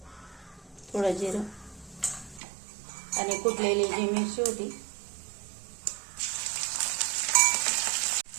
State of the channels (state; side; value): drops out; left; at 2.4 s